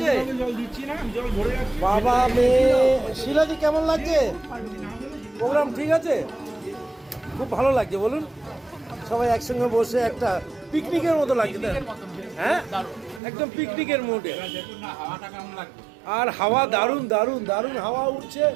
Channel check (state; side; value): drops out; left; at 13.2 s